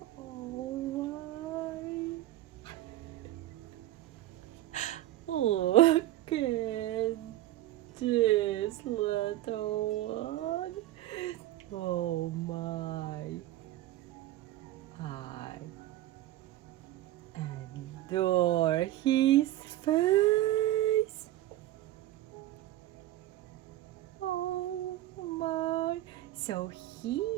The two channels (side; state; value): left; quieter; 14.7 dB